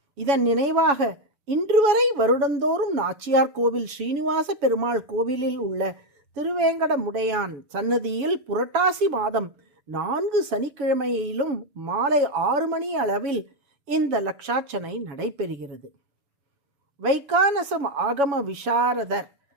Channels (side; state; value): left; late; 7.1 ms